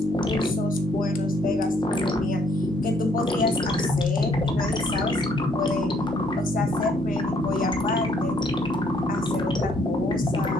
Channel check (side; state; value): both; normal; correlation 0.66